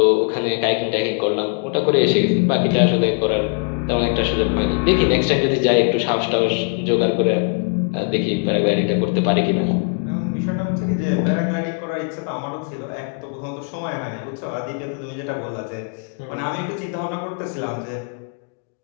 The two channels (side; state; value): right; quieter; 36.5 dB